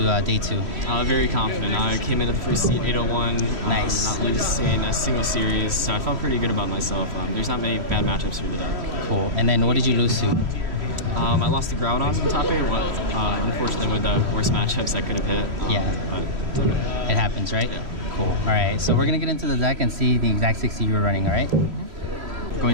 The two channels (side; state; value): left; late; 3.1 ms